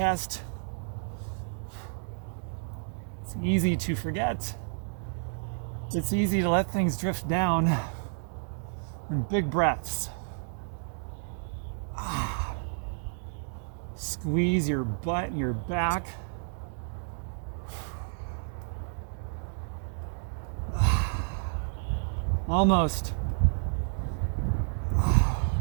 It's easy to forget. It's easy to let things drift down in big breaths. Squeeze your butt and your back. Almost.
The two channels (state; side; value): silent; left; digital silence